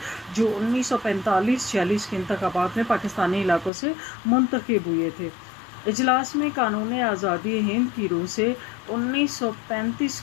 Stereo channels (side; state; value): right; drops out; at 3.7 s